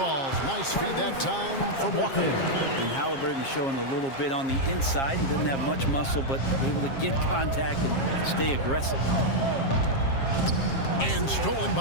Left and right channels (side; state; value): right; late; 7.4 ms